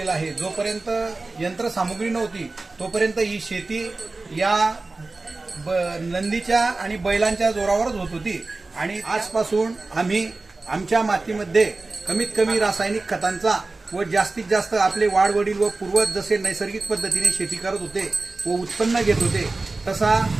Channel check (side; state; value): left; quieter; 3.4 dB